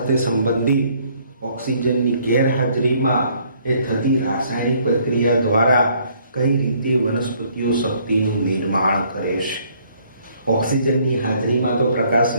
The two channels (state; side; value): inverted; both; correlation -0.64